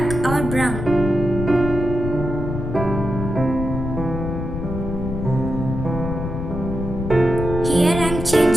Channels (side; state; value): left; noise; rumble, 5 dB below the sound